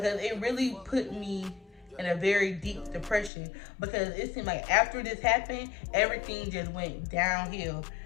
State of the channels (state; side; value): drops out; right; at 3.3 s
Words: it really put me in a very deep depression, because it seemed like after this happened, everything just went downhill.